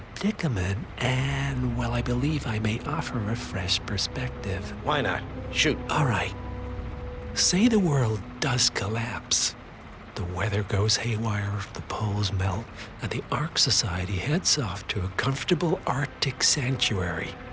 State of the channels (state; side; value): identical; both; correlation 1.00